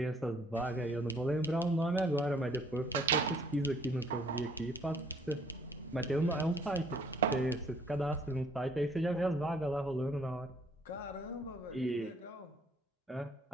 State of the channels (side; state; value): both; normal; correlation 0.62